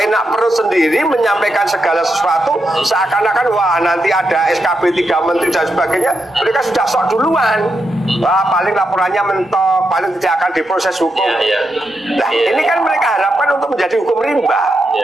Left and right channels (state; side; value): normal; both; correlation 0.84